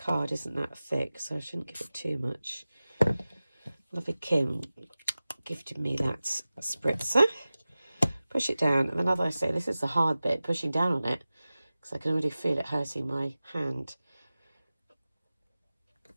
isn't that thick, so I shouldn't give it too much. Lovely Kim gifted me that spritzer. Push it down, and then as I say, this is the hard bit, pushing down on it, because I can already feel it hurting my hand.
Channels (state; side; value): inverted; both; correlation -0.97